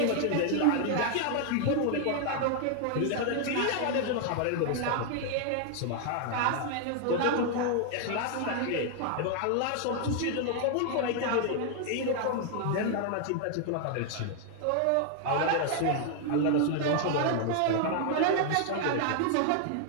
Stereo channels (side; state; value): both; different; correlation 0.00